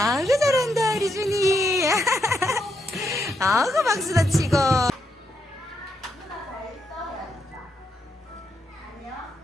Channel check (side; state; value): both; normal; correlation 0.80